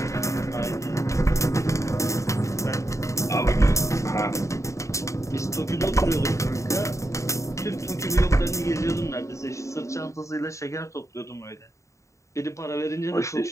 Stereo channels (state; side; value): late; right; 0.15 ms